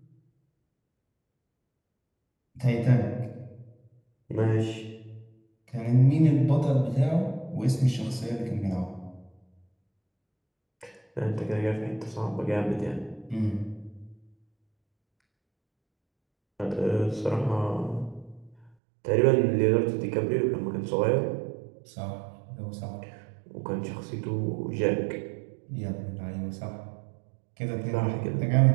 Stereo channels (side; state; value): left; drops out; at 18.7 s